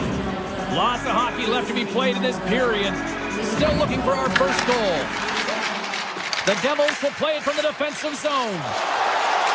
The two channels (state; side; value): identical; both; correlation 1.00